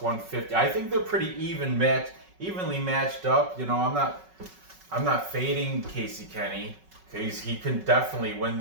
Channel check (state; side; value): late; left; 5.3 ms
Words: I think they're pretty evenly matched up. You know, I'm not fading Casey Kenney because he can definitely win